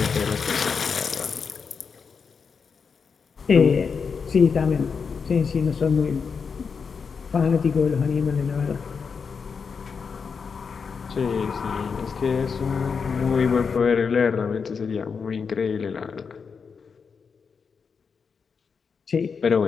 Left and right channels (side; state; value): right; quieter; 5.7 dB